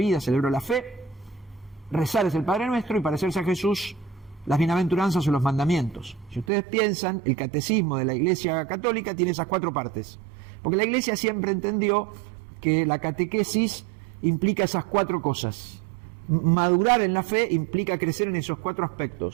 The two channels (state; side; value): drops out; left; at 6.5 s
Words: celebro la fe, rezar es el Padre Nuestro y parecerse a Jesús, las bienaventuranzas o los mandamientos. Si ustedes piensan, el catecismo de la Iglesia Católica tiene esas 4 partes, porque la Iglesia siempre entendió que la catequesis implica esas 4 cosas. Madurar en la fe implica crecer en esos 4